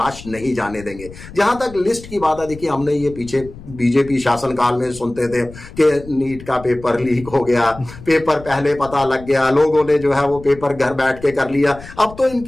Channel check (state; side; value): noise; left; rumble, 17 dB below the sound